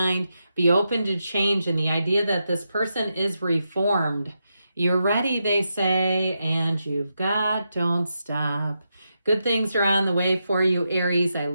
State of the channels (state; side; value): inverted; both; correlation -0.86